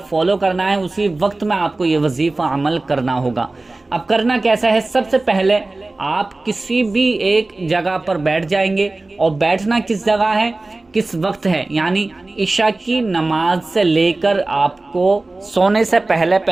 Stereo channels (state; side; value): quieter; left; 3.1 dB